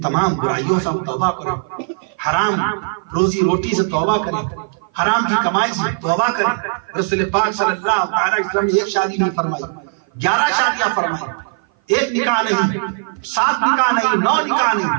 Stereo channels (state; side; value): silent; left; 56 dB below the other